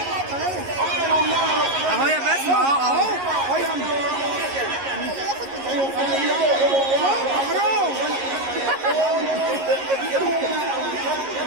اهو يا بسمة اهو.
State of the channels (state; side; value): late; left; 11 ms